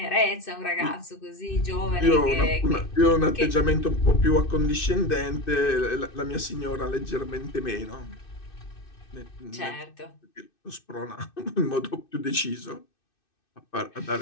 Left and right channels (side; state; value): right; late; 2.6 ms